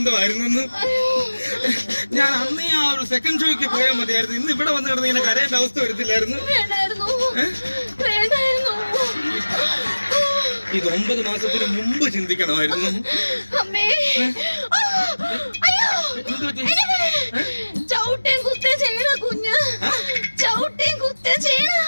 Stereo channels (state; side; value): inverted; both; correlation -1.00